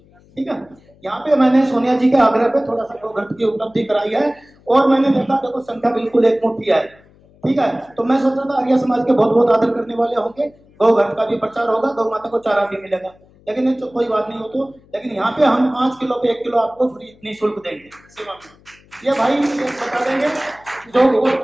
ठीक है, यहाँ पे मैंने सोनिया जी के आग्रह पे थोड़ा सा गोघृत की उपलब्धि कराई है, और मैंने देखा देखो संख्या बिल्कुल एक मुट्ठी है। ठीक है, तो मैं सोच रहा था आर्य समाज के बहुत बहुत आदर करने वाले होंगे, गोघृत का भी प्रचार होगा, गौ माता को चारा भी मिलेगा, लेकिन ये तो कोई बात नहीं हो तो। लेकिन यहाँ पे हम 5 किलो पे 1 किलो आपको फ्री निःशुल्क देंगे सेवा में। ये भाई ये बता देंगे जो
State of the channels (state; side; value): noise; left; hum, 29 dB below the sound